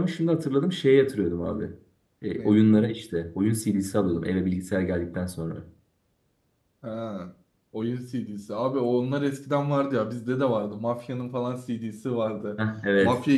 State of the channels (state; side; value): identical; both; correlation 1.00